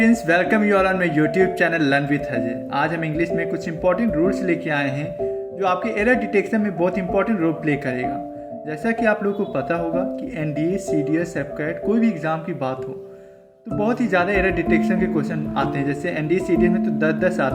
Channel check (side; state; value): both; identical; correlation 1.00